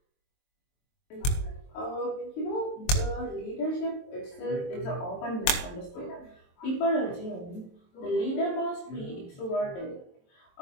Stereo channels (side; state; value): right; late; 23 ms